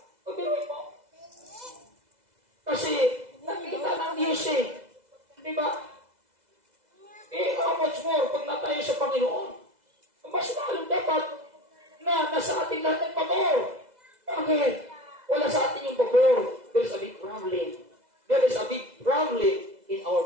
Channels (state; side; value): late; left; 2.0 ms